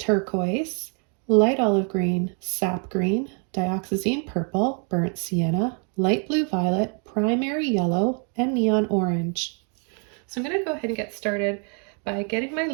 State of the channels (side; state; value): left; quieter; 39.9 dB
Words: light olive green, sap green, dioxazine purple, burnt sienna, light blue violet, primary yellow, and neon orange. So I'm going to go ahead and get started by getting my